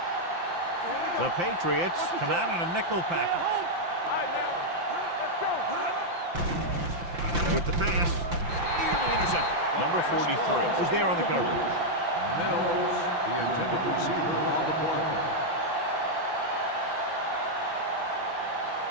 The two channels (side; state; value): left; late; 5.8 ms